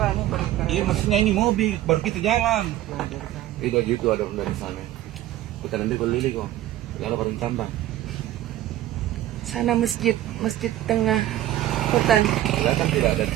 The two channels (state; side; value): quieter; left; 13.9 dB